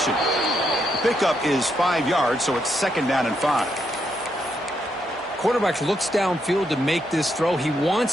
The pickup is 5 yards, so it's 2nd down and 5. Quarterback looks downfield to make this throw. He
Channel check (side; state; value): both; normal; correlation 0.79